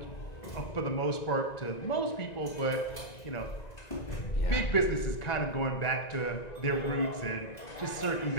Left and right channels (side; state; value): right; late; 1.9 ms